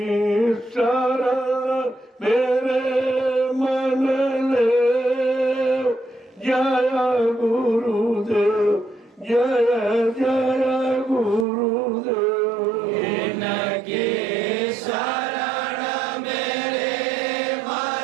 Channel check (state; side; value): drops out; left; at 11.5 s